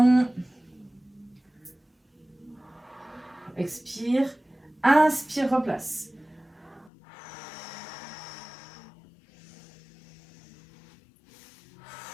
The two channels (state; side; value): drops out; right; at 6.9 s